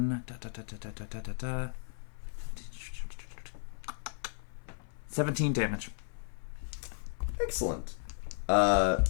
17 damage. Excellent.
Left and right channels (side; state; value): right; silent; 55 dB below the other